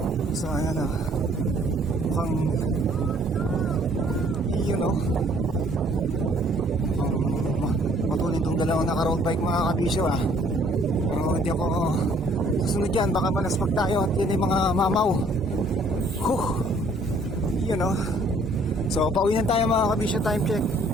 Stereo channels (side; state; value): both; normal; correlation 0.60